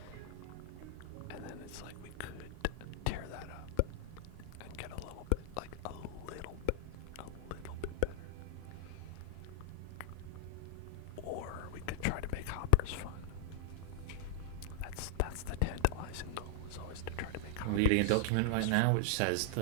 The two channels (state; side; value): different; both; correlation 0.00